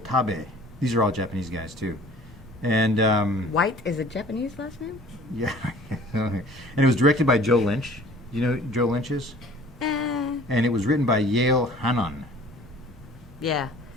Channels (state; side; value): normal; both; correlation 0.49